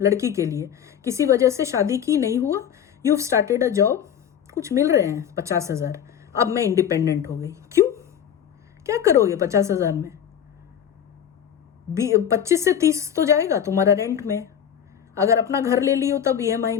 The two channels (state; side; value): quieter; right; 9.0 dB